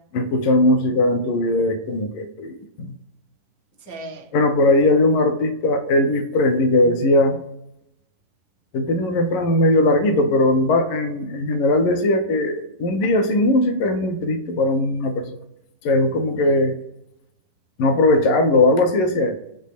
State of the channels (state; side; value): late; right; 11 ms